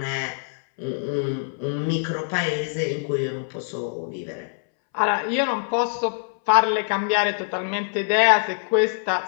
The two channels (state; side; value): silent; right; 63 dB below the other